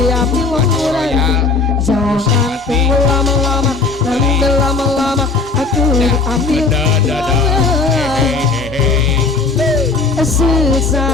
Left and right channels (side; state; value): right; quieter; 4.2 dB